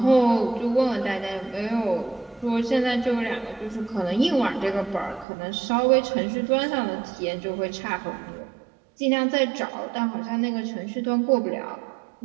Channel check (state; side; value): drops out; left; at 5.2 s